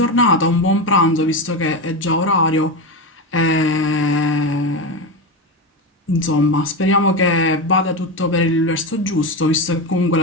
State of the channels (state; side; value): normal; both; correlation 0.16